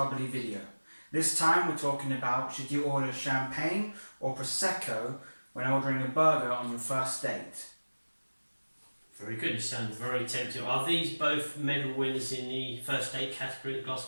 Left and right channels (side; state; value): both; inverted; correlation -1.00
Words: video. This time we're talking about should you order champagne or Prosecco when ordering a burger on your first date. Very good, it sounds very tempting. Are these both medal winners in the first date category at Glass